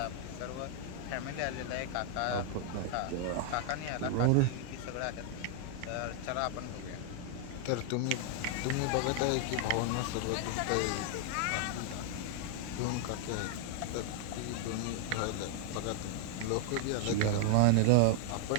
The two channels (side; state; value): both; different; correlation 0.00